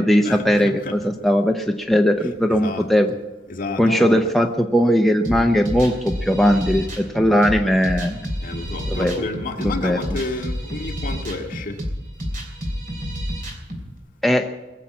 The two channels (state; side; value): normal; both; correlation 0.86